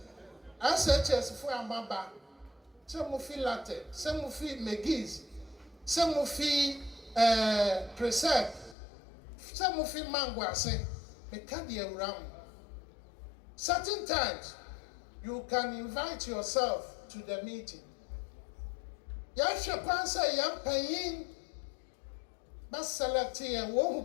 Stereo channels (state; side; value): drops out; right; at 8.8 s